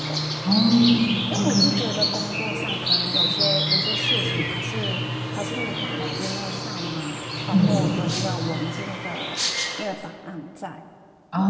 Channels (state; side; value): identical; both; correlation 1.00